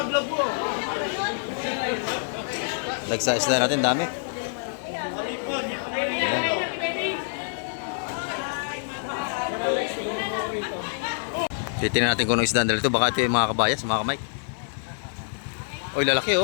mo. Lagsa isda natin, dami. Yan. Titignan natin kung anong isda dito. Baka ito yung mga kabayas, mga kamay. Oy, lalaki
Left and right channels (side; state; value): right; silent; digital silence